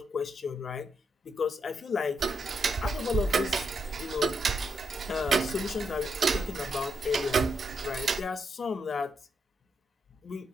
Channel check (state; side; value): normal; both; correlation 0.80